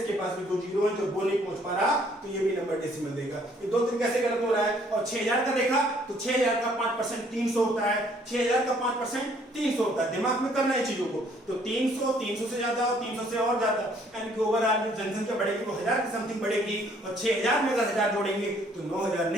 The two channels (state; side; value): normal; both; correlation 0.62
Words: पास भी 2 जीरो हैं, जो वो नहीं पहुंच पा रहा तो ये भी नंबर डेसिमल देगा। ये दो तरीके से गलत हो रहा है। और 6000 का देखा तो 6000 का 5% 300 होता है, 6000 का 5% 300 होता है। दिमाग में करना है चीजों को, तो 300 300 से ज्यादा और 300 से और ज्यादा, यानी कि ओवरऑल जो जनसंख्या बढ़ेगी वो 1000 की समथिंग बढ़ेगी, और 6000 में अगर 1000 जोड़ेंगे तो 9000